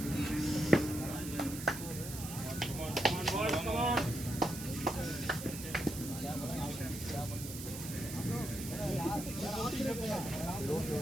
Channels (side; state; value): right; noise; hiss, 9 dB below the sound